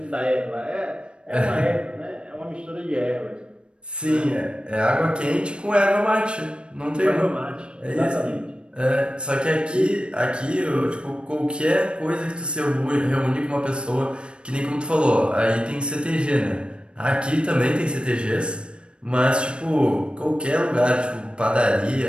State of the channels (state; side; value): late; left; 0.056 ms